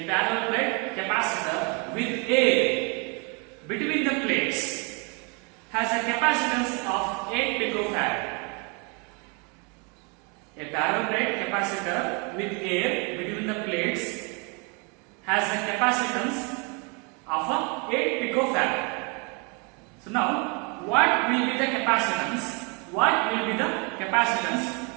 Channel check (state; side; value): quieter; left; 33.0 dB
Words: parallel plate capacitor with air between the plates has a capacitance of 8 picofarad. A parallel plate capacitor with air between the plates has a capacitance of 8 picofarad. So now, what will be the capacitance? What will be the capacitance